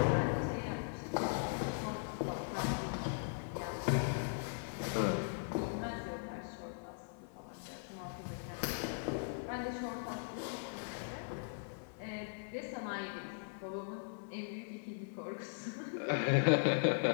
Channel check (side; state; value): right; silent; 52 dB below the other